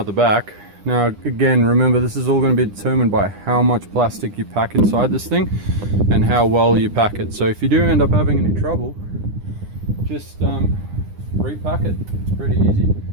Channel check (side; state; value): left; late; 9.9 ms